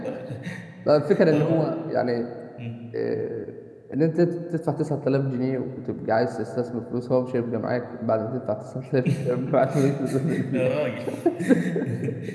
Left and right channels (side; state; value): both; identical; correlation 1.00